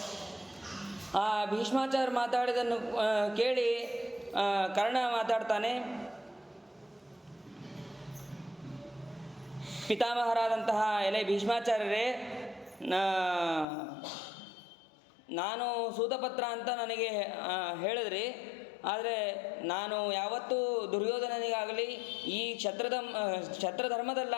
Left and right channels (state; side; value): drops out; right; at 13.7 s